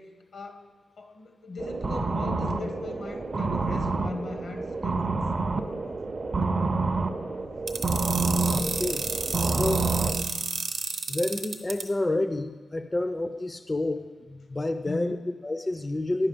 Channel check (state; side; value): normal; both; correlation 0.90